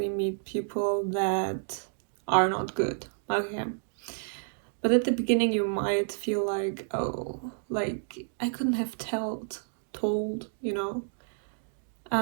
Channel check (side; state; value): left; silent; digital silence